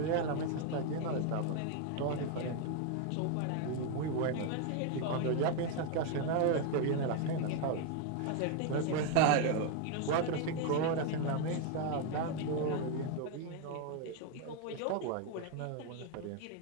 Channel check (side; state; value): both; different; correlation 0.01